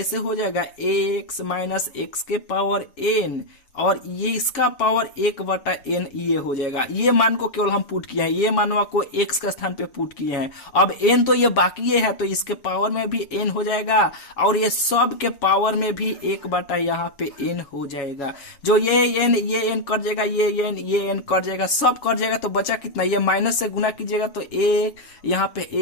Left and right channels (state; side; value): late; right; 7.2 ms